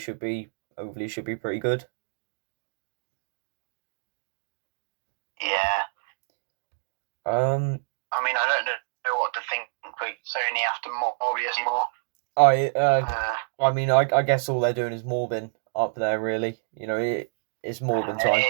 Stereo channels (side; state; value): left; silent; digital silence